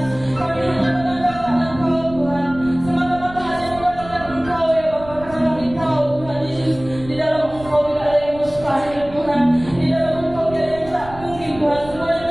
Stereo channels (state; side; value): noise; right; rumble, 16 dB below the sound